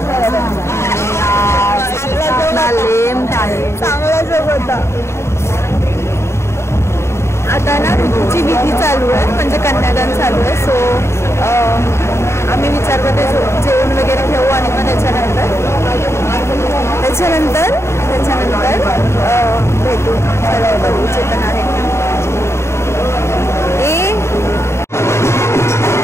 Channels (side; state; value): right; late; 0.13 ms